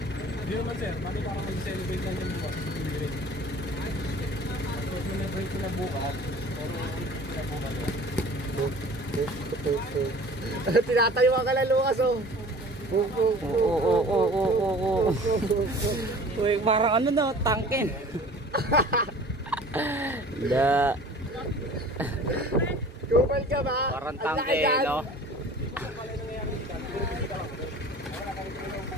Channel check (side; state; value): both; normal; correlation 0.45